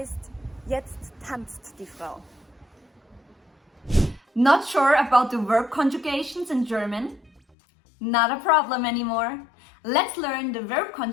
jetzt tanzt die Frau. Not sure about the verb conjugations in German? Not a problem anymore. Let's learn the verb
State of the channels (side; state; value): right; drops out; at 7.4 s